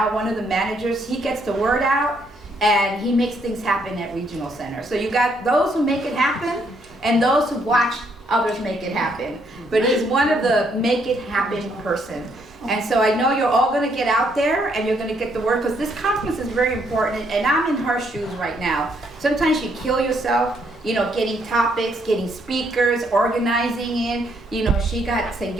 one of the managers. He gets the word out, and he makes things happen at Regional Center. So you got those who make it happen, and those who watch others make it happen. But he's one of the make it happen person. And so I know you're all going to get out there, and you're going to get the word, because this conference is very important, and I'm in her shoes right now. Sometimes you kill yourself, getting topics, getting speakers, organizing it. She got St.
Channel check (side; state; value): both; normal; correlation 0.71